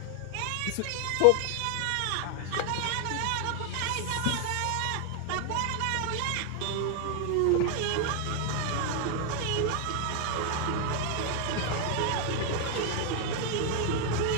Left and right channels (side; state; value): both; different; correlation 0.00